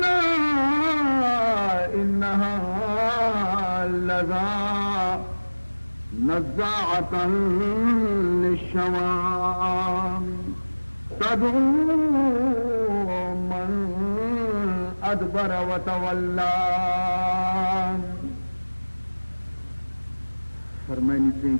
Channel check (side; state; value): both; inverted; correlation -1.00